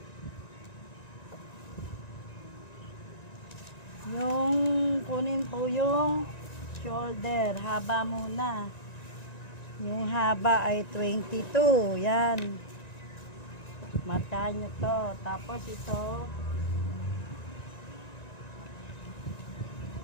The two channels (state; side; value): late; right; 1.9 ms